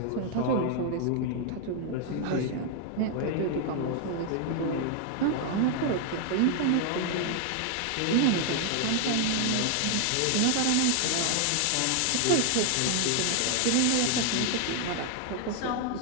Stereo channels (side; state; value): both; different; correlation 0.00